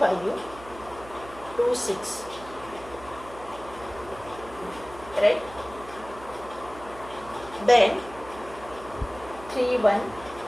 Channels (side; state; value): right; noise; hum, 17 dB below the sound